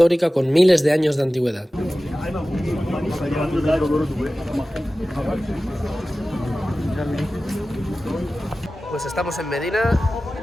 con miles de años de antigüedad. Pues estamos en Medina,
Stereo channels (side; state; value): both; normal; correlation 0.96